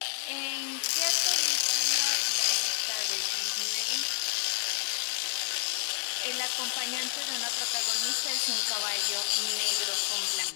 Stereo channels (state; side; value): silent; right; 58 dB below the other